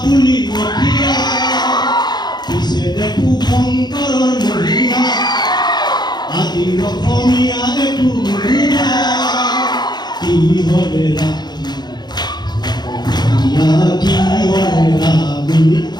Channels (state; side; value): late; right; 0.20 ms